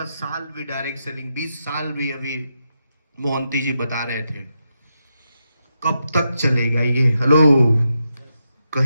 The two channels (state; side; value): inverted; both; correlation -0.85